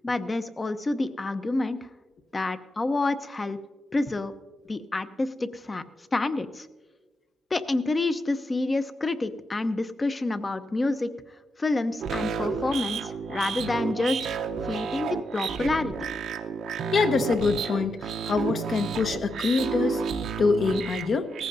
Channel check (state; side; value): normal; both; correlation 0.85